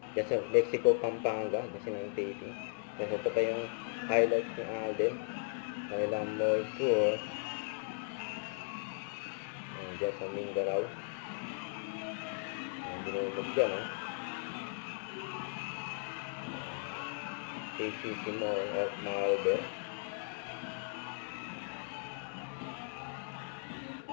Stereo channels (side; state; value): right; silent; digital silence